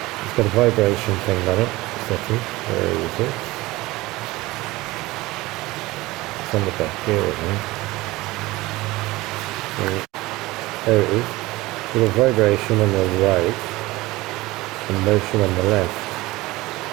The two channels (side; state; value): left; quieter; 19.9 dB